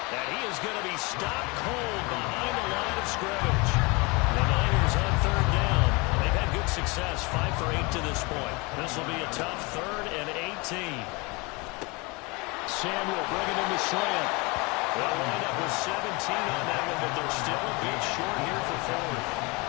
And he is going to be stopped cold behind the line of scrimmage. The Niners on 3rd down. They've had good success, 5 for 8 to this point. This will be a tough 3rd and 18. Samuel bringing in the slant. They'll wind up with 17 on that one, but they're still a bit short here for 4th.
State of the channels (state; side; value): quieter; right; 27.1 dB